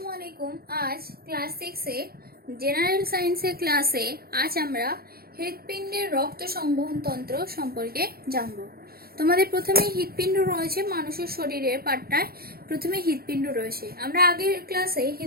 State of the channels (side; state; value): left; late; 0.44 ms